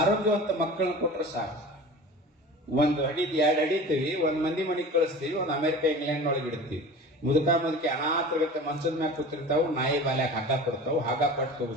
ಮಕ್ಕಳನ್ನ ಕೊಟ್ರೆ ಸಾಕು. 1 ಅಡಿ 2 ಅಡಿತೀವಿ, 1 ಮಂದಿ ಮನೆಗೆ ಕಳಿಸ್ತೀವಿ, 1 ಅಮೆರಿಕ ಇಂಗ್ಲೆಂಡ್ ಒಳಗೆ ಇಡ್ತೀವಿ. ಮುದುಕಿ ಅನಾಥಗತ್ತೆ ಮಂಚದ ಮ್ಯಾಗ ಕೂತಿರ್ತಾವು, ನಾಯಿ ಬಾಲ್ಯಾಗ ಹಗ್ಗ ಕೊಡ್ತಾವು, ಹಗ್ಗ ಪಟ್ಟು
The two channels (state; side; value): normal; both; correlation 0.37